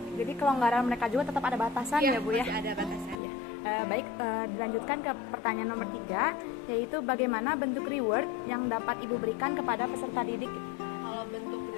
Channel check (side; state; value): right; drops out; at 3.2 s